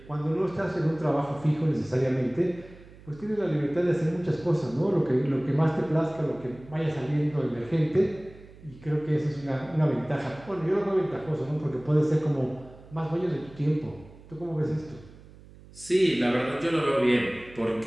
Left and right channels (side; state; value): right; noise; hum, 21 dB below the sound